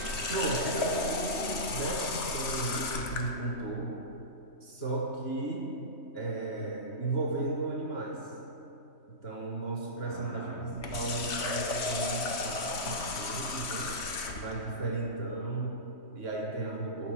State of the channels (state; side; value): late; right; 3.2 ms